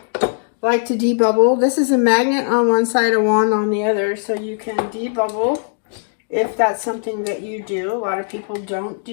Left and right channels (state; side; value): silent; right; digital silence